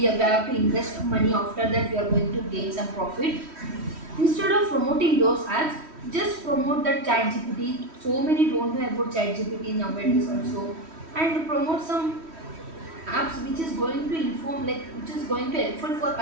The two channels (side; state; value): left; late; 3.1 ms